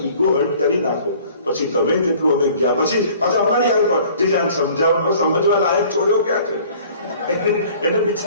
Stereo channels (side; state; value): both; inverted; correlation -0.51